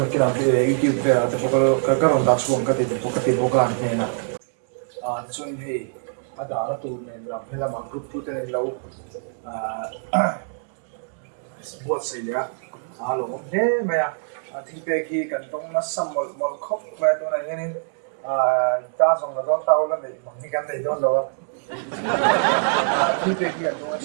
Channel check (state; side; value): silent; left; digital silence